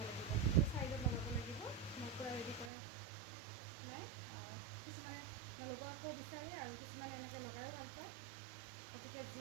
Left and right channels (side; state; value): left; drops out; at 2.7 s